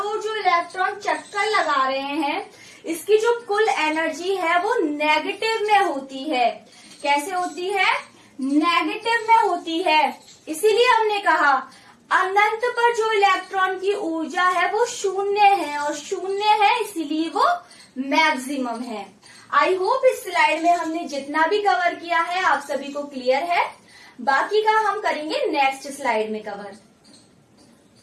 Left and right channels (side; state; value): both; identical; correlation 1.00